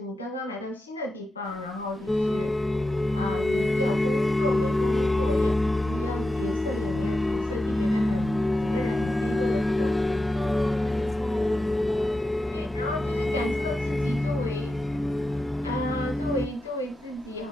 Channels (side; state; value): both; normal; correlation 0.90